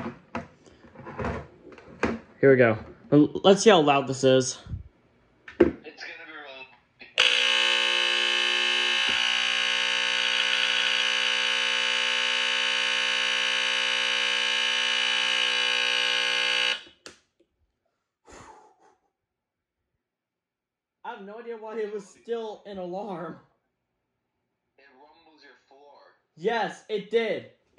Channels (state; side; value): identical; both; correlation 1.00